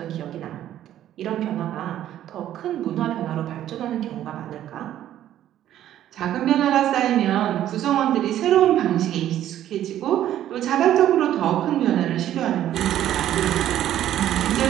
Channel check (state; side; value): quieter; left; 11.9 dB